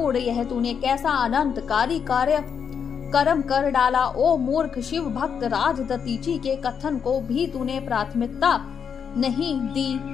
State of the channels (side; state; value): right; quieter; 7.1 dB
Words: यह तूने कैसा अनंतकारी कार्य कर्म कर डाला। ओ मूर्ख शिव भक्त, राजदतीची के कथन को भी तूने प्राथमिकता नहीं